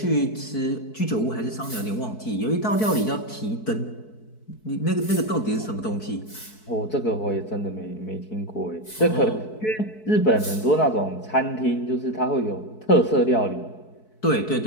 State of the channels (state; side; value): late; right; 4.6 ms